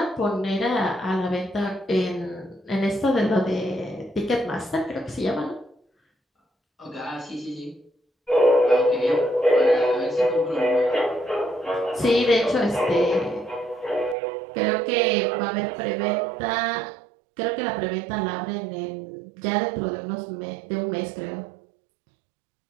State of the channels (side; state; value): left; drops out; at 14.2 s